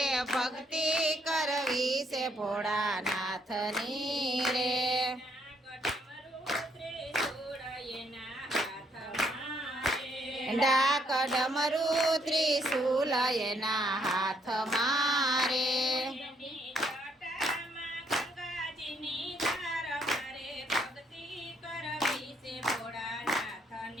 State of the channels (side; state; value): both; normal; correlation 0.70